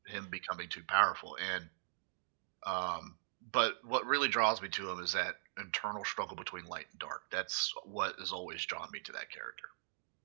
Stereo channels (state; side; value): silent; left; digital silence